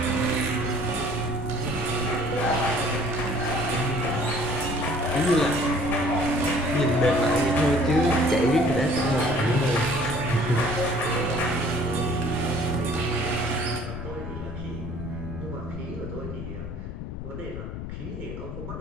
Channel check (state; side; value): noise; left; rumble, 7 dB below the sound